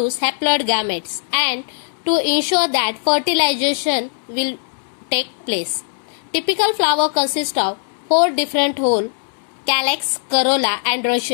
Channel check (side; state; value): right; silent; 66 dB below the other